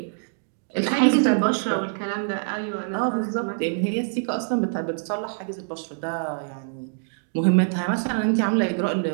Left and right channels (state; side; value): silent; left; digital silence